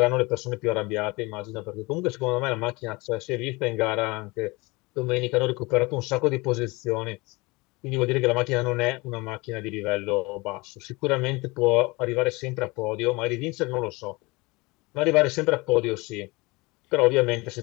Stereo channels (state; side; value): quieter; right; 24.3 dB